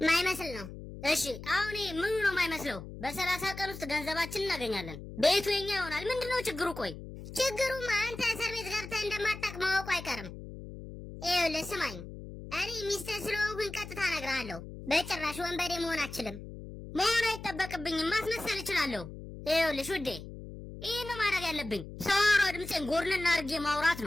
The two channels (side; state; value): left; noise; hum, 12 dB below the sound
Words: ማይመስል ነው። እሺ አሁን ምኑ ነው ማይመስለው? በ30 ቀን ውስጥ ገንዘባችን እናገኛለን። ቤቱ የኛ ይሆናል። ምንድነው ችግሩ? ቆይ ችግሩማ አንተ እስር ቤት ገብተህ እንደማታውቅ ማወቁ አይቀርም። ይኸውልህ ስማኝ፣ እኔ ሚስትህ ስለሆንኩኝ ቀጥታ እነግርሃለሁ። በጭራሽ ወንበዴ መሆን አችልም። መሆን አይጠበቅብኝም። ማስመሰል እችላለሁ። ይኸውልሽ ውዴ፣ ይሄን ነው ማድረግ ያለብኝ። ሳወራ ድምፄን ጎርንና አድርጌ ማውራት